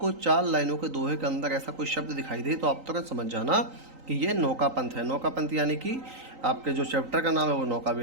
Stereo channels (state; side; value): late; left; 3.9 ms